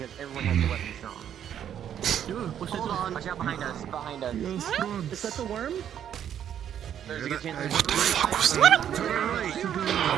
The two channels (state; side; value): quieter; left; 9.7 dB